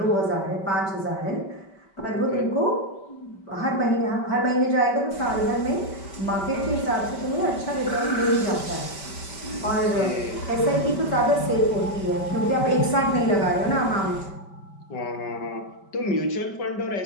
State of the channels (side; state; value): right; late; 5.2 ms